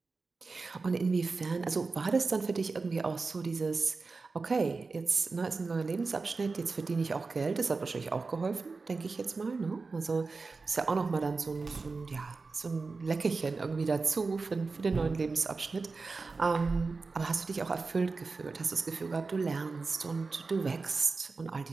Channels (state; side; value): quieter; left; 4.1 dB